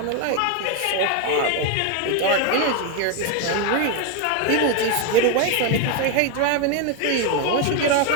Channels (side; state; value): both; different; correlation 0.01